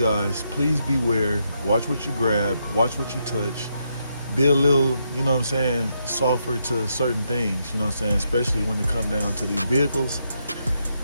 please beware. Watch what you grab, watch what you touch. Be a little, you know what I'm saying, softer to certain things, you know what I'm saying, especially when it comes down to these vehicles.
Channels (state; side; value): inverted; both; correlation -0.80